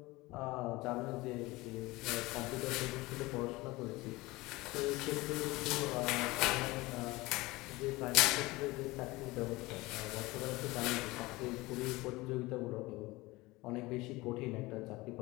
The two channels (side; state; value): right; quieter; 21.1 dB